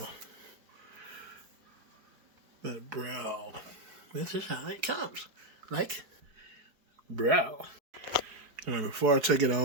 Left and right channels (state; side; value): late; left; 4.7 ms